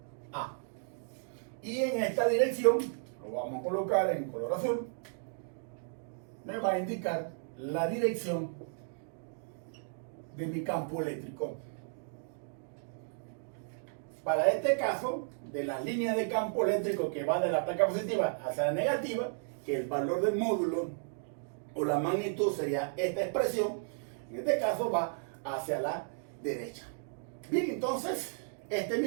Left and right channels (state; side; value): silent; left; digital silence